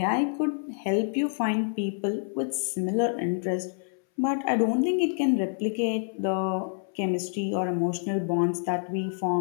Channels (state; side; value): silent; right; 60 dB below the other